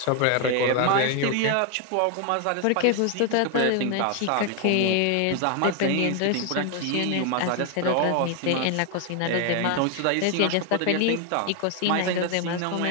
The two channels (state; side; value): different; both; correlation 0.01